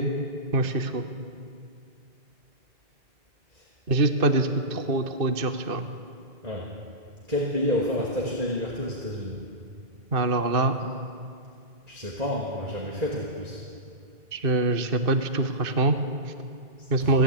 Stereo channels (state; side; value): late; left; 2.6 ms